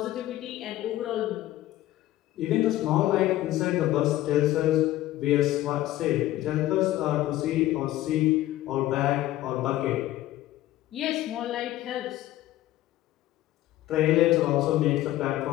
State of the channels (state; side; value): quieter; right; 15.0 dB